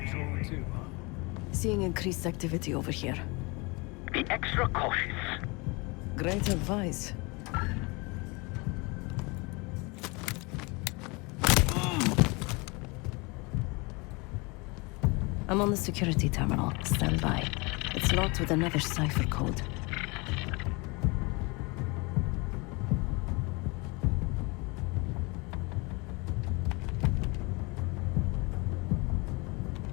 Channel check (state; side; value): quieter; right; 27.3 dB